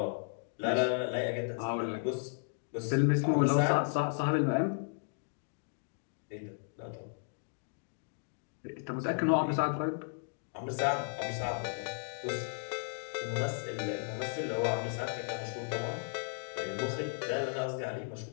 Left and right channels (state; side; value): silent; right; digital silence